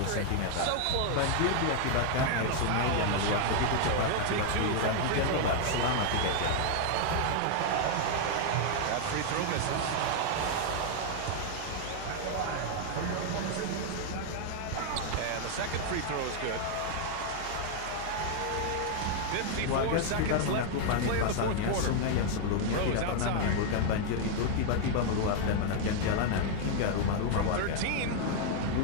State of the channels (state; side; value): different; both; correlation 0.00